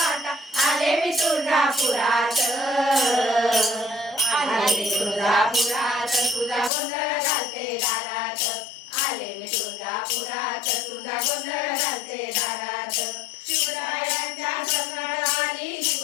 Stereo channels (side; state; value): right; drops out; at 6.7 s